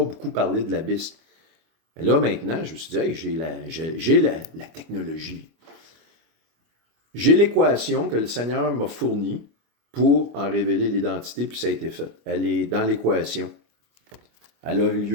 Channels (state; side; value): late; left; 25 ms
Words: beaucoup parlé de l'abysse. Mais là, maintenant, je me suis dit, hey, j'ai la technologie. J'ai l'équation que le Seigneur m'a fournie pour en révéler l'identité, puis ça a été fait. Elle est dans l'équation. Elle a eu